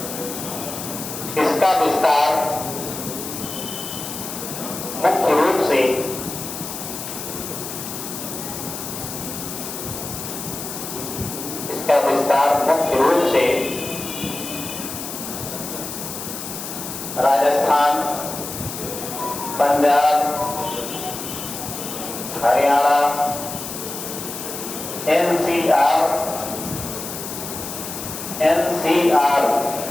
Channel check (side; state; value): left; noise; hiss, 8 dB below the sound